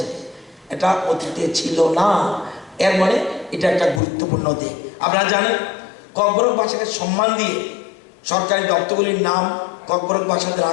এটা অতীতে ছিল না, এর মানে এটা একটা গুরুত্বপূর্ণ দিক। আপনারা জানেন ককবরক ভাষাকে সম্মান দিয়ে সরকারি দপ্তরগুলির নাম ককবরক ভাষাতে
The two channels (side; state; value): right; drops out; at 4.0 s